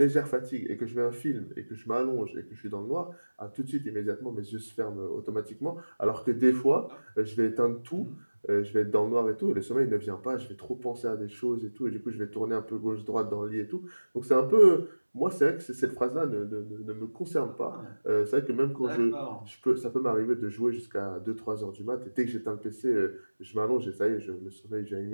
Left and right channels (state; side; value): inverted; both; correlation -1.00